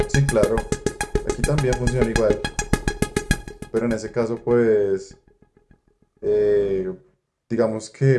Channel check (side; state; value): both; identical; correlation 1.00